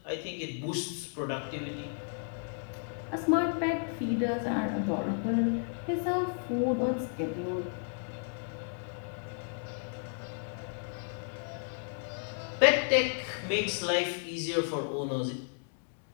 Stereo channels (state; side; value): silent; right; 56 dB below the other